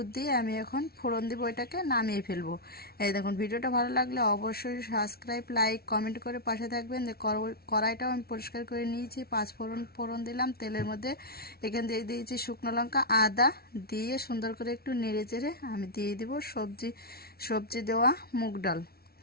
দিয়ে আমি এখন ফোড়ন দিব, এটাকে নামিয়ে ফেলবো। এই দেখুন, ভিডিওটা ভালো লাগলে অবশ্যই সাবস্ক্রাইব, লাইক, কমেন্ট করে পাশে থাকবেন। কড়াইটাও আমি পরিষ্কার করে নিয়েছি। 5 ফোড়ন দিলাম তেলের মধ্যে। এখান দিয়ে দিয়েছি শুকনো লঙ্কা, আদা দিয়ে সুন্দর করে একটু নেড়ে চেড়ে আমি দিয়ে দিব সবজি দেওয়া মুগ ডাল।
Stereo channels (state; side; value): late; right; 0.44 ms